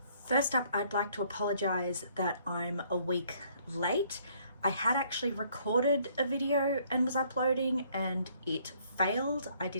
First up, I'd like to apologize that I'm a week late. I had actually recorded a video and was uploading and it failed. I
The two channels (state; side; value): inverted; both; correlation -0.64